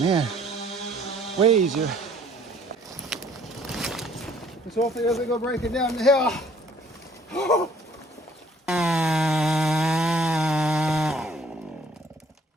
man. Way easier. So hopefully it doesn't go breaking down the hill.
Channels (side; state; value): both; normal; correlation 0.58